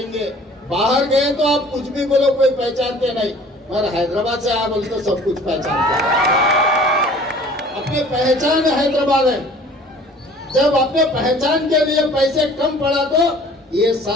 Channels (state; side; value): normal; both; correlation 0.49